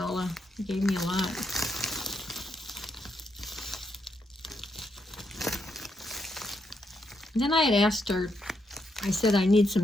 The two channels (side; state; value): both; normal; correlation 0.80